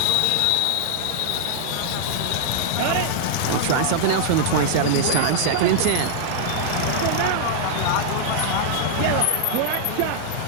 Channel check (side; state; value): both; different; correlation -0.01